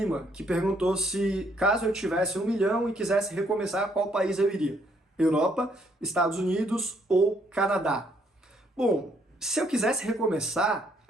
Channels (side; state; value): both; normal; correlation 0.69